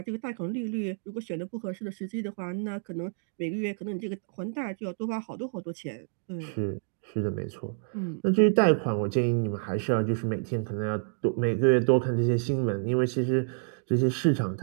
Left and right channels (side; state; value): left; silent; digital silence